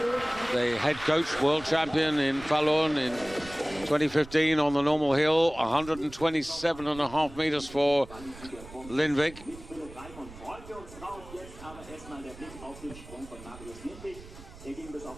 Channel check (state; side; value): noise; right; rumble, 17 dB below the sound